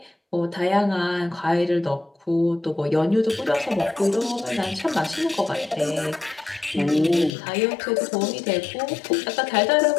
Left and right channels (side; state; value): right; drops out; at 7.3 s